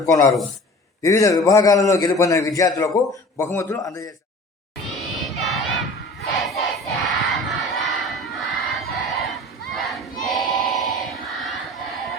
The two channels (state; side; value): normal; both; correlation 0.42